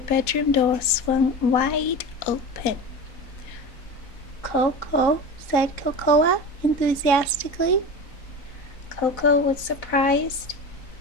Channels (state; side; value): late; right; 3.9 ms